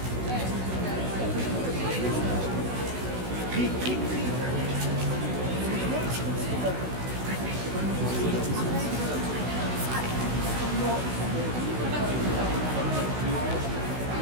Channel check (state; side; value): late; left; 16 ms